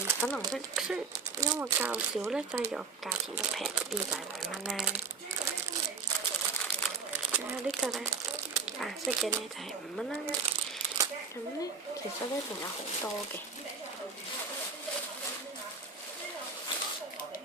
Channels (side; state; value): left; quieter; 5.1 dB